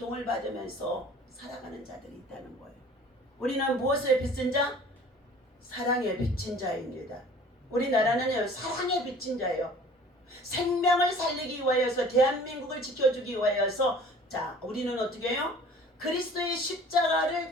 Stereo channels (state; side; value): normal; both; correlation 0.48